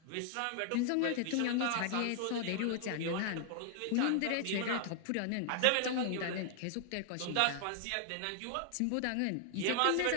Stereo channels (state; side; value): different; both; correlation 0.00